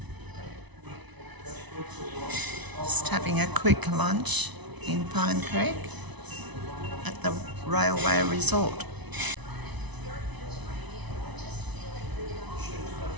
Just having a quick lunch in Pine Creek at the Railway Resort.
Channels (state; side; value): late; left; 1.0 ms